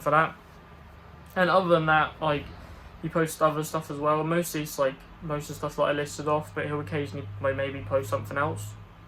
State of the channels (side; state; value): both; identical; correlation 1.00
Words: for that. And other than that, like, he posts other stuff as well. Mostly it's like most of the stuff that I listed off, but he'll occasionally maybe post something else.